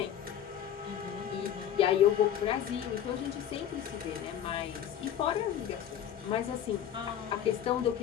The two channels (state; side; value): quieter; right; 9.9 dB